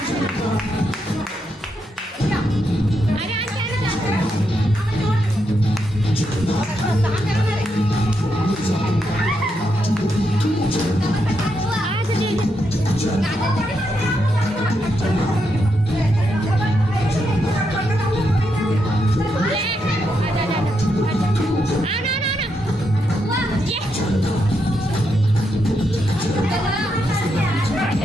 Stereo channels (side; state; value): both; normal; correlation 0.82